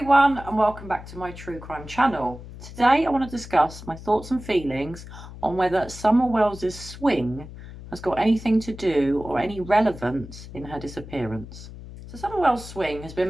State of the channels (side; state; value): left; noise; hum, 14 dB below the sound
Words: and welcome back to my true crime channel. Today I want to discuss my thoughts and feelings on whether Summer Wells's swing has got anything to do or any relevance in her disappearance. So Summer Well's swing has